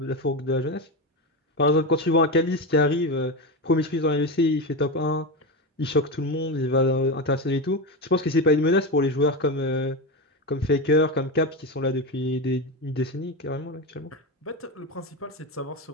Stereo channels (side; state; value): both; normal; correlation 0.17